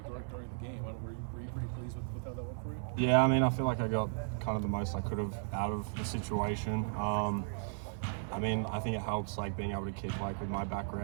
during the game. Were you pretty pleased with how that went for you? yeah, I mean, I feel like I got kind of the most I could have out of the situation. I mean, I think it helps, like, being able to kick, like, with my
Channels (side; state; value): left; silent; digital silence